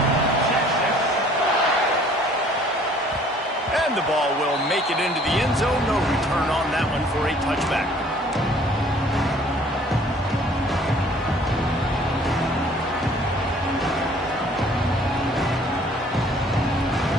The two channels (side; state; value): both; normal; correlation 0.55